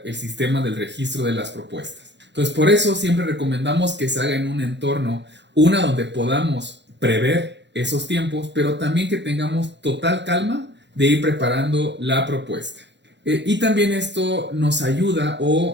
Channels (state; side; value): late; left; 0.52 ms